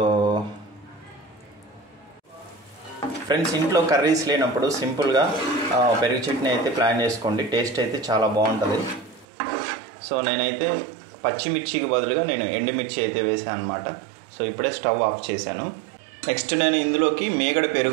friends, ఇంట్లో curries లేనప్పుడు సింపుల్గా పెరుగు చట్నీ అయితే ప్లాన్ చేసుకోండి. టేస్ట్ అయితే చాలా బాగుంటుంది. సో నేనైతే పచ్చిమిర్చికి బదులుగా నేను ఎండుమిర్చి అయితే వేసాను అనమాట. సో ఇప్పుడే స్టవ్ ఆఫ్ చేశాను. నెక్స్ట్ నేను ఇందులోకి మీగడ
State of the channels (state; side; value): drops out; left; at 9.2 s